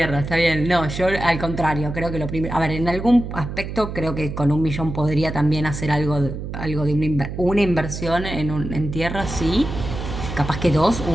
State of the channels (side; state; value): right; noise; hum, 7 dB below the sound